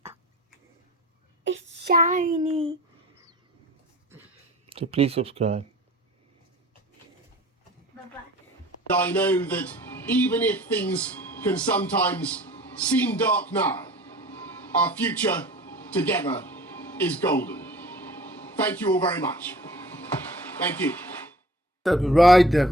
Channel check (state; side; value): normal; both; correlation 0.44